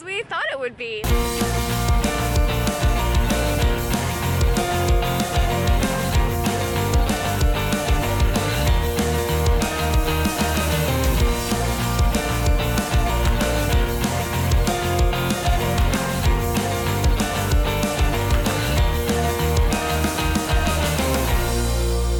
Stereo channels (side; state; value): both; identical; correlation 1.00